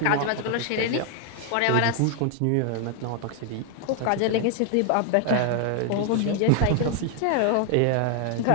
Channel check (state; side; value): different; both; correlation 0.00